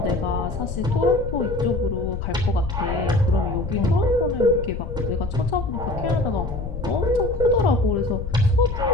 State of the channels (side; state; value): left; noise; rumble, 6 dB below the sound